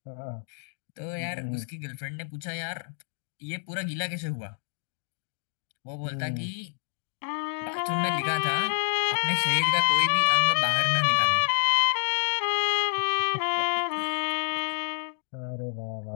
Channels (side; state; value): right; silent; digital silence